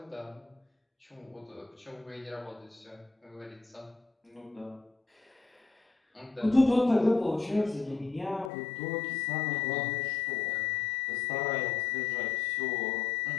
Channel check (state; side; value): drops out; right; at 8.5 s